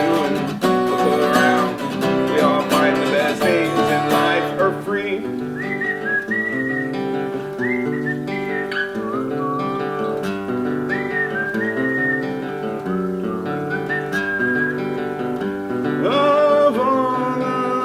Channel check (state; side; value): identical; both; correlation 1.00